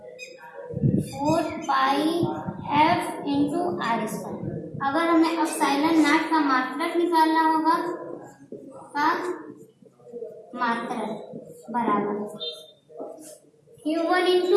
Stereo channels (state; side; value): identical; both; correlation 1.00